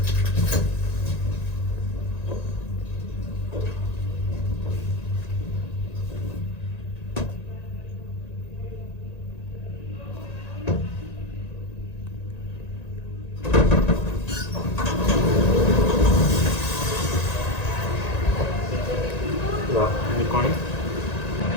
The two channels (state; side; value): late; right; 1.9 ms